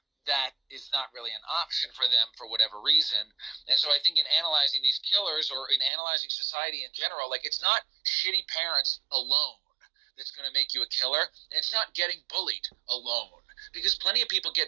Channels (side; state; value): left; drops out; at 5.9 s